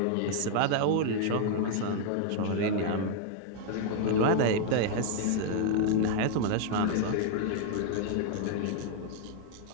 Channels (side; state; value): both; different; correlation 0.00